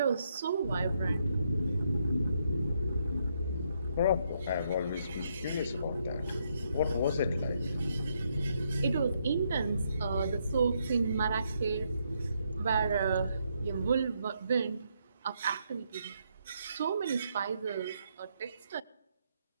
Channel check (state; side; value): inverted; both; correlation -0.76